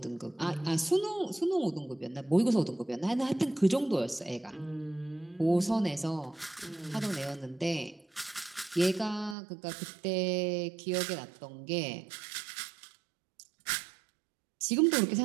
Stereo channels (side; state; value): left; drops out; at 9.3 s